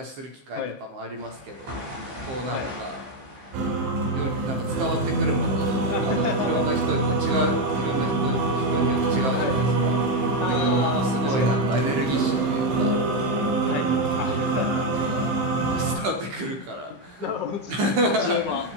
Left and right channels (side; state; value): left; late; 15 ms